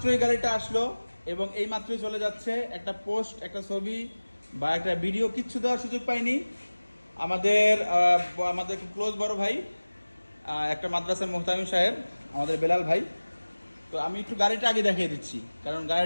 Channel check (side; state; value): both; inverted; correlation -1.00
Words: গাড়িটা আসলো এবং এই মাত্রই চলে যাচ্ছে। একটা পোস্ট, একটা ছবি বা একটা ভিডিও কিচ্ছু দেওয়ার সুযোগ পাইনি। আমাদের খুব ক্লোজ বড় ভাই, একটা মাদ্রাসার মোহতামিম সাহেব, আমাদের বেলাল ভাই। তো আমি একটু গাড়িটা আগে দেখিয়ে দিচ্ছি, কারণ